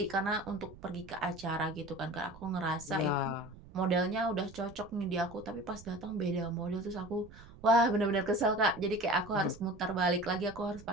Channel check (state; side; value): noise; right; rumble, 19 dB below the sound